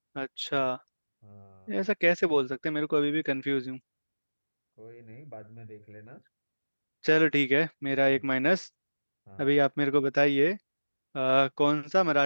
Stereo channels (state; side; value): inverted; both; correlation -1.00